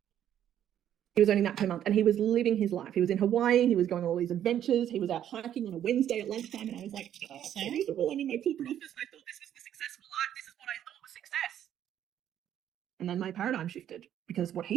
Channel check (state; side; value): quieter; left; 10.6 dB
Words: He was earning that per month and he was living his life. He was in Hawaii. He was going on all these adventures. He was out hiking on a Wednesday at lunchtime. And I was like, oh, so miserable. I'm in my corporate office. I thought this was the successful life. This is what I thought was success. And then my paradigm shifted. because what